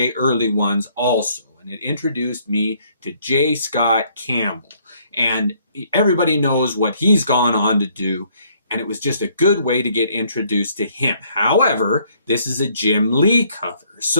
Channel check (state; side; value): inverted; both; correlation -0.65